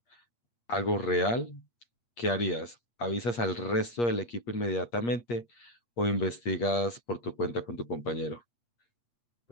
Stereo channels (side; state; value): right; late; 8.5 ms